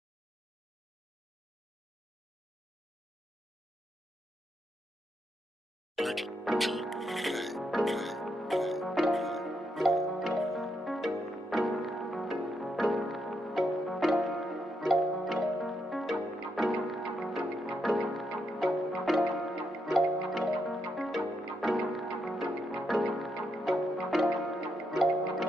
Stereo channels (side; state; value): both; normal; correlation 0.80